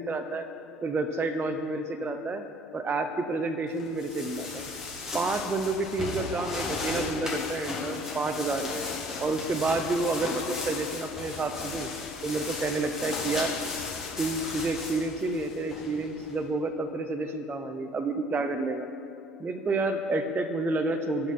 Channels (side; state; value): both; normal; correlation 0.58